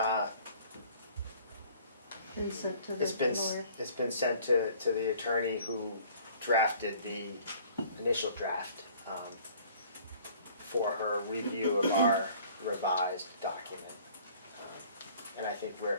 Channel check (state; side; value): inverted; both; correlation -0.53